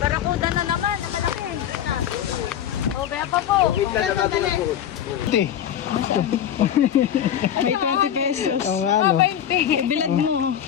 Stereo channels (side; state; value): right; quieter; 10.0 dB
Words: na naman, na malaki. O, kaya pa po. May 20 pesos. ano, Ibilad mo.